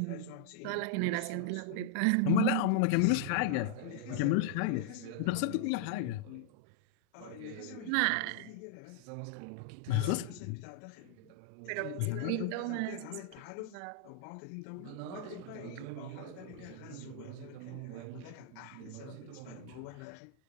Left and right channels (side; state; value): both; different; correlation 0.00